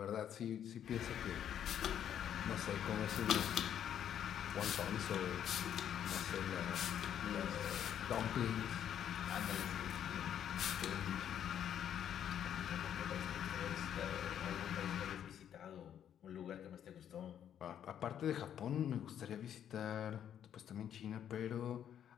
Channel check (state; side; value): quieter; right; 9.7 dB